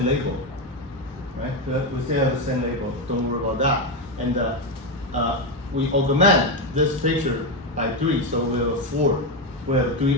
label, right? We still have a send label. Don't worry about that. And we augment this picture by 3, so we have 4. We have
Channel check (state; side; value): normal; both; correlation 0.10